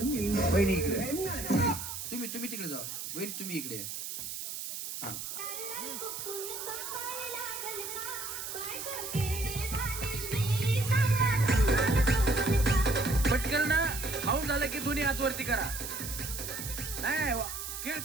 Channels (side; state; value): right; noise; hiss, 6 dB below the sound